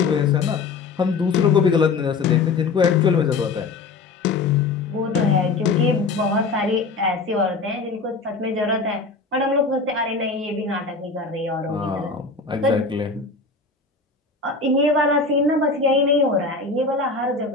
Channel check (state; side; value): quieter; right; 4.1 dB